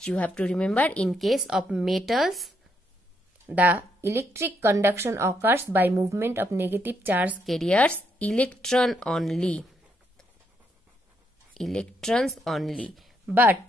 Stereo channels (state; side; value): normal; both; correlation 0.76